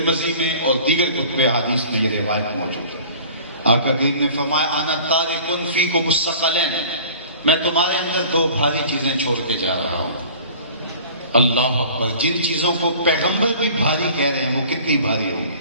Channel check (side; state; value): both; inverted; correlation -0.45